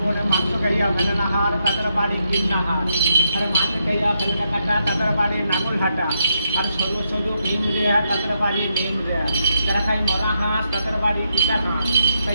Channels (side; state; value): both; inverted; correlation -0.81